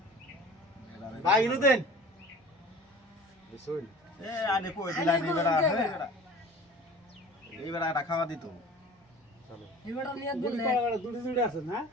ভাই ইনু দেন বুঝুন এ আনে কই দিলা নি বেটা এই বেটা এটা খাওয়া দিত চলো এবারে নিয়ে দিলে দুটি দুটি আছে না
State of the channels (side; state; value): both; normal; correlation 0.42